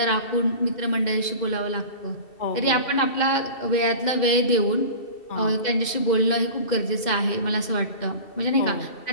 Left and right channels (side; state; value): right; late; 2.7 ms